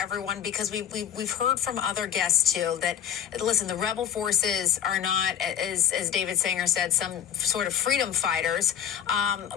because we've heard from other guests too that, listen, the rebel forces are not, as David Sanger said, some sort of freedom fighters,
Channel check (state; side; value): quieter; right; 9.4 dB